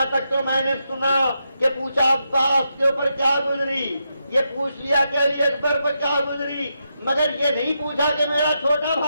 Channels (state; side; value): inverted; both; correlation -0.84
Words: تک تو میں نے سنا کہ پوچھا عباس کے اوپر کیا گزری، یہ پوچھ لیا کہ علی اکبر پر کیا گزری، مگر یہ نہیں پوچھا کہ میرا چھوٹا